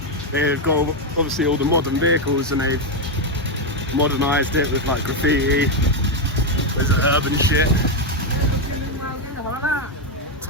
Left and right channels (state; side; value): normal; both; correlation 0.05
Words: They've got obviously all the modern vehicles and they've modernised it with like graffiti. There's urban shit.